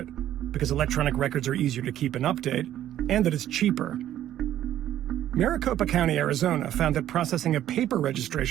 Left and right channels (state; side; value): quieter; left; 12.1 dB